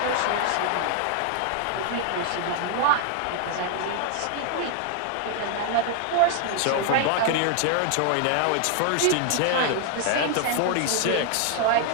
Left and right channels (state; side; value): different; both; correlation 0.00